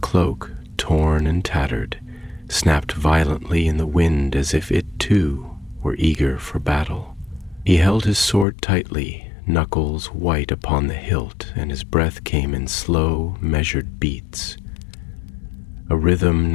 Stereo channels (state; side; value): drops out; right; at 8.5 s